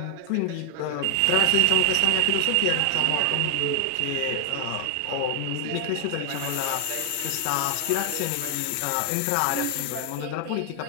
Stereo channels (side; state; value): both; different; correlation 0.00